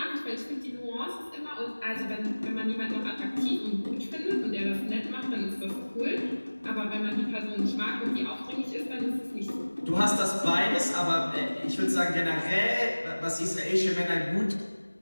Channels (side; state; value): both; inverted; correlation -1.00